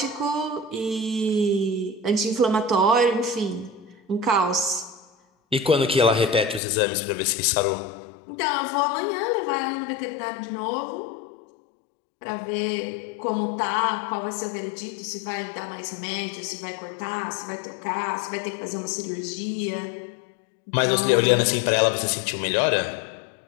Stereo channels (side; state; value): right; drops out; at 6.6 s